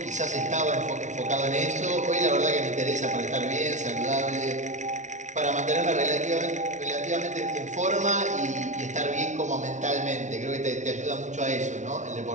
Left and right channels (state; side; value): late; left; 0.35 ms